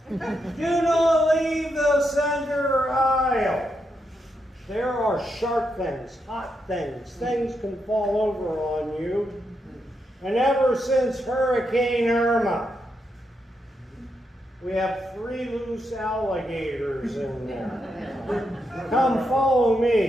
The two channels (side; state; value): both; normal; correlation 0.82